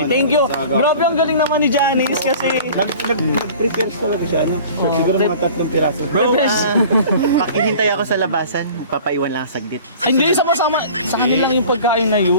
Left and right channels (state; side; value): inverted; both; correlation -0.44